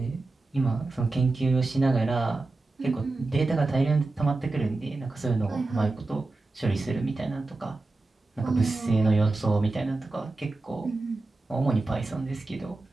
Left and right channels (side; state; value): left; quieter; 3.3 dB